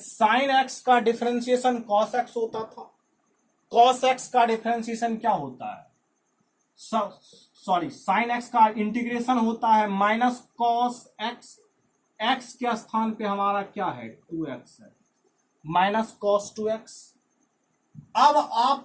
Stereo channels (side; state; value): both; identical; correlation 1.00